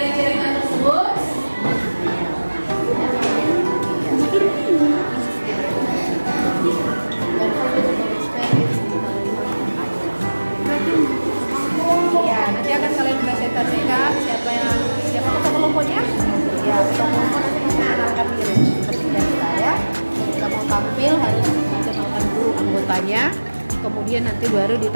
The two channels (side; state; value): both; inverted; correlation -1.00